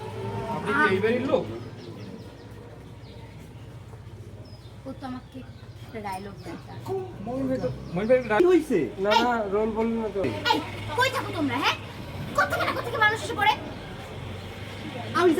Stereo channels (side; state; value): both; identical; correlation 1.00